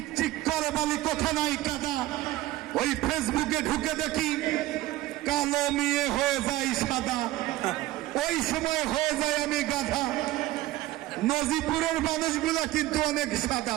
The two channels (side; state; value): left; quieter; 16.4 dB